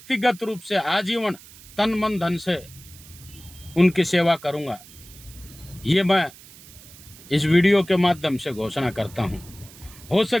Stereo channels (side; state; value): right; noise; hiss, 20 dB below the sound